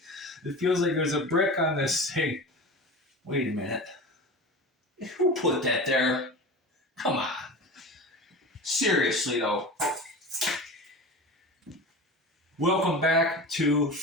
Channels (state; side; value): normal; both; correlation 0.31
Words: It feels like there's a brick on this thing. Wait a minute. Who put that there? Come on. Seriously though. Welcome back to